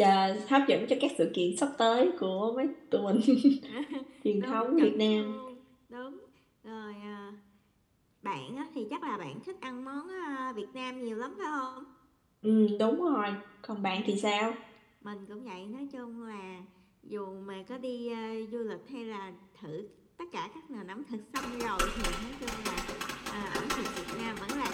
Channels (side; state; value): both; identical; correlation 1.00